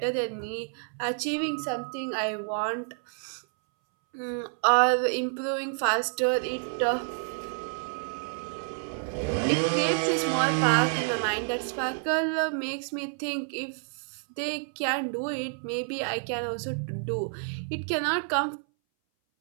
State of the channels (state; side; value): silent; left; 59 dB below the other